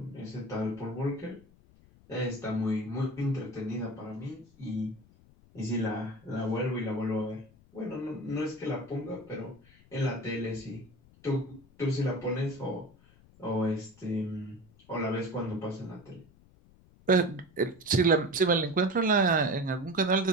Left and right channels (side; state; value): left; noise; rumble, 27 dB below the sound